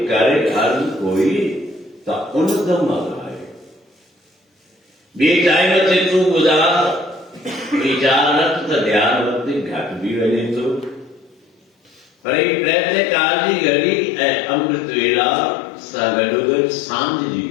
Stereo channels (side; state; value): right; drops out; at 12.1 s